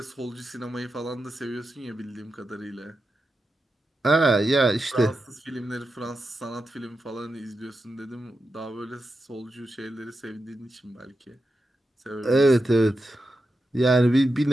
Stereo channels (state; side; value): normal; both; correlation 0.89